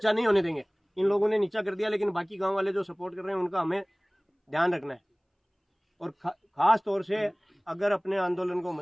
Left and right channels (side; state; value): both; identical; correlation 1.00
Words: नहीं होने देंगे। इन लोगों ने नीचा कर दिया, लेकिन बाकी गाँव वाले जो सपोर्ट कर रहे हैं उनका हमें ध्यान रखना है। और खास तौर से अगर अपने आंदोलन को